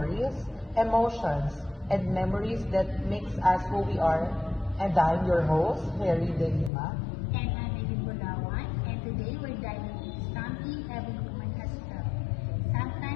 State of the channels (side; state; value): right; drops out; at 6.7 s